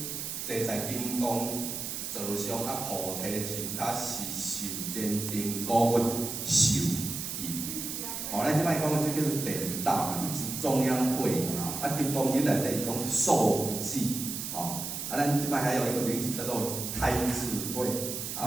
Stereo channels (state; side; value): noise; right; hiss, 5 dB below the sound